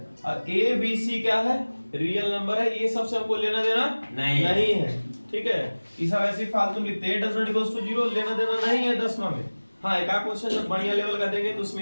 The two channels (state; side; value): inverted; both; correlation -1.00